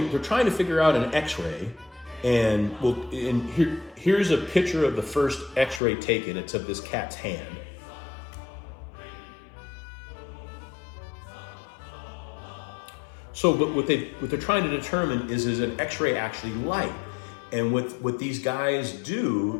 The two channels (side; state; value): right; drops out; at 5.8 s